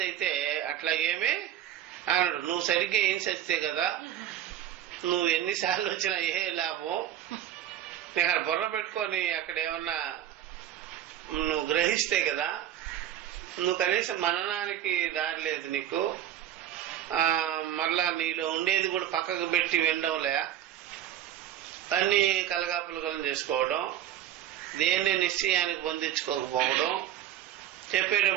అయితే అట్లా ఏమీ అన్నాడు. నువ్వు సరిగ్గా ఏం చేస్తే కదా, నువ్వు ఎన్నిసార్లు వచ్చినా ఏ లాభం, నీకు అక్కడ బుర్ర పెట్టుకొని అక్కడ ఏమన్నా నువ్వు గ్రహిస్తే కదా, నువ్వు కనీసం మననానికి దారి లేదు నీకు. మళ్ళా నీలో ఉండేది కూడా పక్కకు పెట్టి వినడంలే, అన్ని కలగాపులగలం చేసుకోవడం, దేన్ని నిశ్చయానికి పొందించుకోకపోవడం,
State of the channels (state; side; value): quieter; left; 11.4 dB